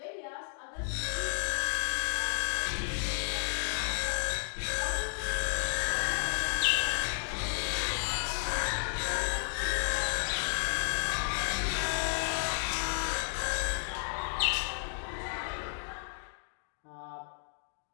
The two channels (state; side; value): silent; right; digital silence